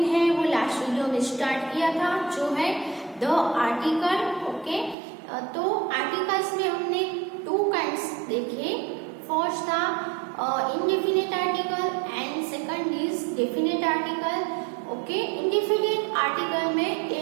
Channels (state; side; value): drops out; left; at 5.0 s